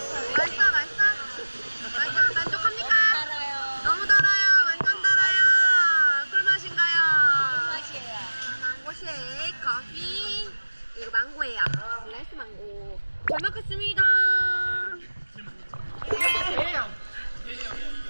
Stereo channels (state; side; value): inverted; both; correlation -1.00